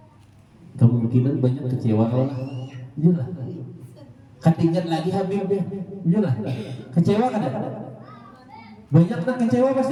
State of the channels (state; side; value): identical; both; correlation 1.00